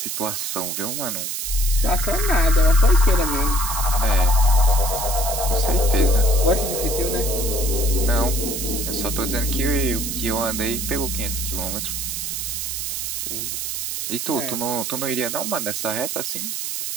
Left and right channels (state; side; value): noise; right; hiss, 3 dB below the sound